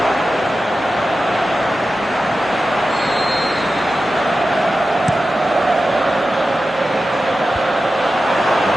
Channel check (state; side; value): normal; both; correlation 0.93